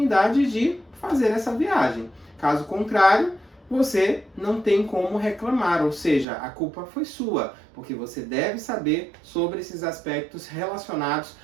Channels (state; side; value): drops out; left; at 6.2 s